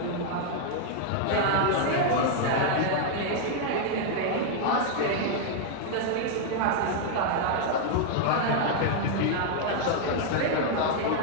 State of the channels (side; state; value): both; different; correlation -0.01